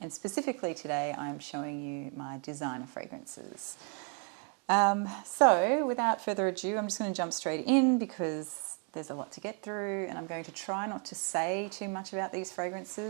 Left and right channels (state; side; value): quieter; left; 37.4 dB